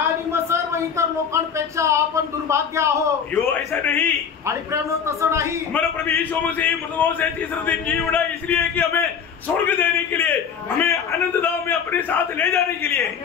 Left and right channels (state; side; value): quieter; right; 7.0 dB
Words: मग सर्व इतर लोकांपेक्षा आपण दुर्भाग्य आहोत। यो ऐसा नहीं, आणि प्रेम तसं नाही। हमारा प्रभु यीशु मसीह मृतकों से तीसरे दिन जी उठा इसलिए कि हमें स्वर्ग देने के लिए, हमें अनंत धाम में अपने साथ ले जाने के लिए।